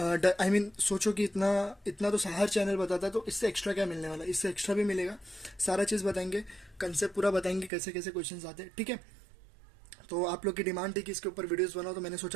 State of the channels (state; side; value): drops out; left; at 7.7 s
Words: सोचो कि इतना इतना तो हर चैनल बताता है, तो इससे एक्स्ट्रा क्या मिलने वाला है? इससे एक्स्ट्रा भी मिलेगा। सारा चीज़ बताएंगे, कंसेप्ट पूरा बताएंगे, कैसे कैसे क्वेश्चन आते हैं। ठीक है, तो आप लोग की डिमांड थी कि इसके ऊपर वीडियोस बनाओ, तो मैंने